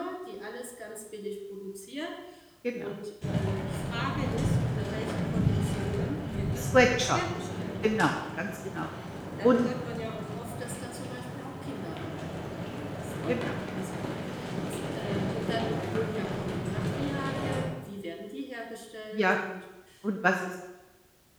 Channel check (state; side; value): identical; both; correlation 1.00